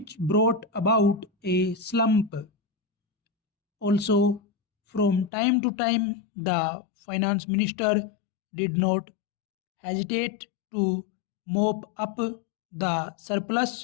brought about a slump. Also, from time to time, the finance minister did not hesitate to mop up the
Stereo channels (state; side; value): drops out; right; at 5.3 s